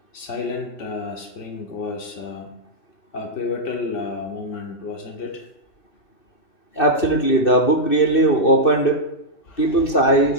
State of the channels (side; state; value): right; late; 2.6 ms